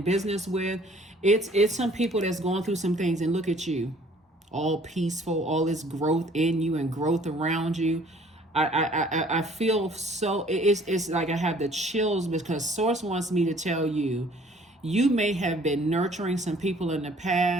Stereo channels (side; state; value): both; normal; correlation 0.56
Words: business with. It's some people that's going through some things, and look at you, all peaceful, all this growth in you and growth around you. I feel so, it's like I have the chills, because Source wants me to tell you, you may have been nurturing some people in the